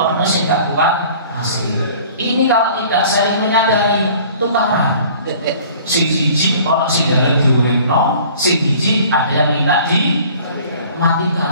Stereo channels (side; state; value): both; inverted; correlation -0.49